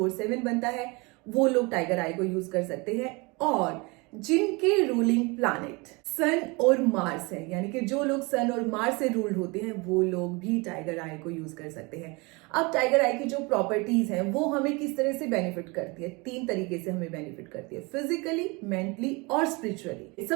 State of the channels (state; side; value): quieter; left; 27.2 dB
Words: 7 बनता है, वो लोग टाइगर आई को यूज कर सकते हैं। और जिनके रूलिंग प्लैनेट सन और मार्स है, यानी कि जो लोग सन और मार्स से रूल्ड होते हैं, वो लोग भी टाइगर आई को यूज कर सकते हैं। अब टाइगर आई की जो प्रॉपर्टीज हैं वो हमें किस तरह से बेनिफिट करती है? 3 तरीके से हमें बेनिफिट करती है, फिजिकली, मेंटली और स्पिरिचुअली।